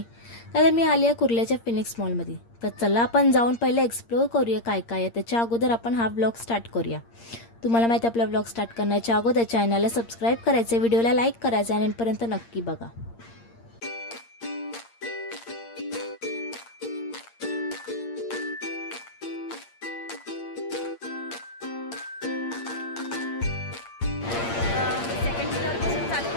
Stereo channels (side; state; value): right; late; 8.7 ms